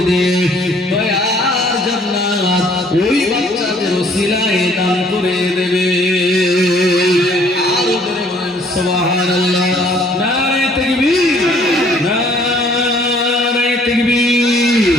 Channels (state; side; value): normal; both; correlation 0.60